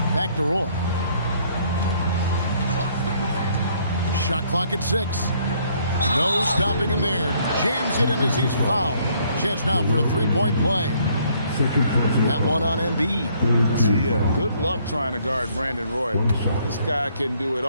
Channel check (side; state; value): both; inverted; correlation -0.65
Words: Back to Roy. Shot clock at 6. No stopping him there. Jams it in as he's fouled. Chance now for a three-point play. That one on Embiid. Yeah, good luck trying to guard Brandon Roy. This guy can do it